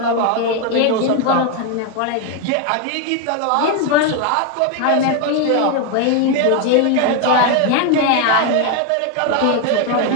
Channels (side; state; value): both; different; correlation 0.01